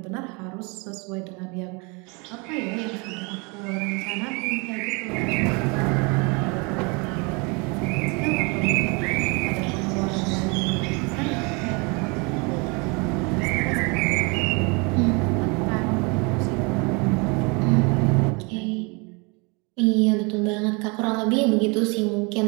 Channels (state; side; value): quieter; left; 30.1 dB